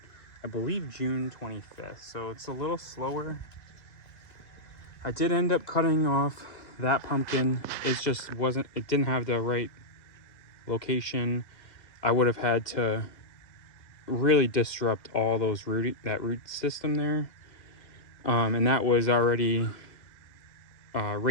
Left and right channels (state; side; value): late; right; 2.0 ms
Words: I believe, June 25th, so it's a little slower. I did end up cutting off that pumpkin. It didn't have the right location. I would have had to really disrupt all those that root system there, and that was already